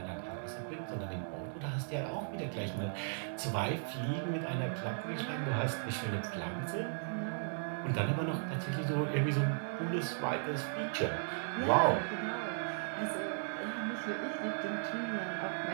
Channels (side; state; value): left; silent; 53 dB below the other